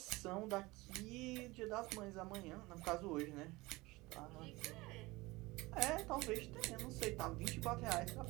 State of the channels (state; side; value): quieter; left; 21.7 dB